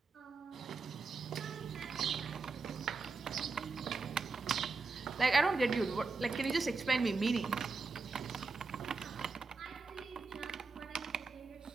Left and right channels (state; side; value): quieter; left; 4.2 dB